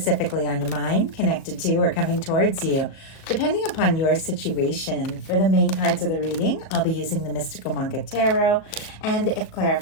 on your mind, connected to, or coming towards you, depending upon your situation. For the main cards of the reading, I'll be using the Mystical Manga Tarot, and if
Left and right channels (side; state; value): right; late; 37 ms